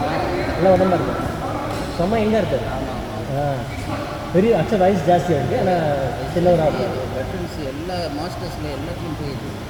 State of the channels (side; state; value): both; identical; correlation 1.00